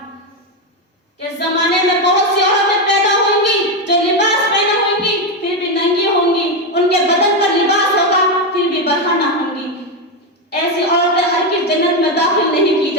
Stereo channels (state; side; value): normal; both; correlation 0.08